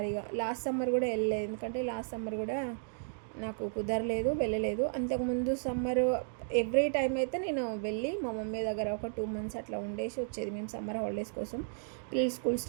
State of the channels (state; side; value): silent; left; digital silence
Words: ఇక లాస్ట్ సమ్మర్ కూడా వెళ్ళలేదు, ఎందుకంటే లాస్ట్ సమ్మర్ కూడా నాకు కుదరలేదు, వెళ్ళలేదు. అంతకుముందు సమ్మర్ ఎవ్రీ టైం అయితే నేను వెళ్ళి మా మమ్మీ దగ్గర ఒక 2 months అట్లా ఉండేసి వచ్చేది మేము సమ్మర్ హాలిడేస్ కోసం. పిల్లలు స్కూల్